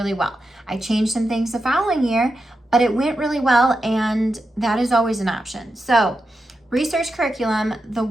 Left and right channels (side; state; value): both; normal; correlation 0.88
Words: well. I changed some things the following year, but it went really well, and that is always an option. So research curriculum, the